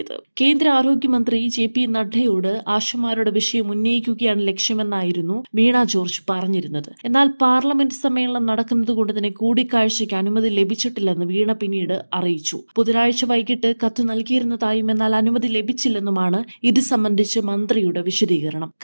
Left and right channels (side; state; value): both; inverted; correlation -1.00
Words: കേന്ദ്ര ആരോഗ്യമന്ത്രി JP നഡ്ഡയോട് ആശമാരുടെ വിഷയം ഉന്നയിക്കുകയാണ് ലക്ഷ്യമെന്നായിരുന്നു വീണ ജോർജ് പറഞ്ഞിരുന്നത്. എന്നാൽ പാർലമെന്റ് സമ്മേളനം നടക്കുന്നതുകൊണ്ട് തന്നെ കൂടിക്കാഴ്ചയ്ക്ക് അനുമതി ലഭിച്ചിട്ടില്ലെന്ന് വീണ പിന്നീട് അറിയിച്ചു. ബുധനാഴ്ച വൈകിട്ട് കത്ത് നൽകിയിരുന്നതായും എന്നാൽ അനുമതി ലഭിച്ചില്ലെന്നുമാണ് ഇത് സംബന്ധിച്ച് മന്ത്രിയുടെ വിശദീകരണം.